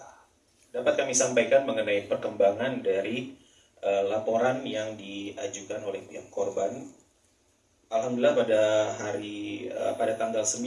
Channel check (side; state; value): both; identical; correlation 1.00